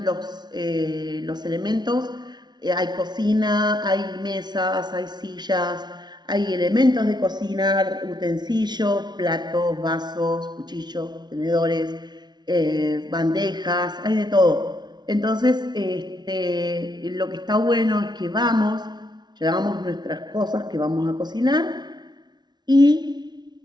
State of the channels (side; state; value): left; late; 0.20 ms